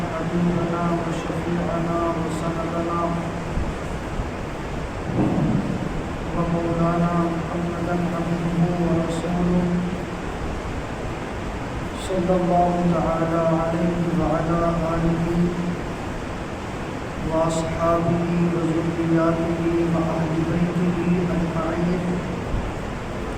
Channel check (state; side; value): identical; both; correlation 1.00